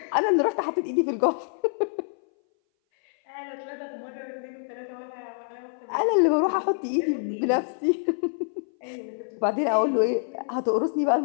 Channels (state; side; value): silent; right; 59 dB below the other